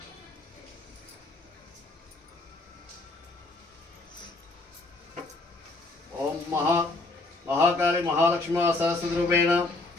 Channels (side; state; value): right; quieter; 3.1 dB